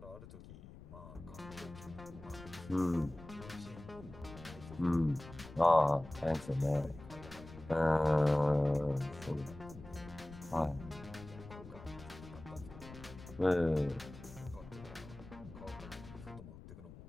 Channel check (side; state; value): left; noise; rumble, 16 dB below the sound